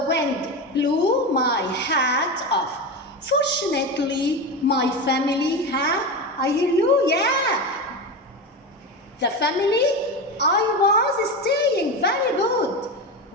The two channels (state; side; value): normal; both; correlation 0.20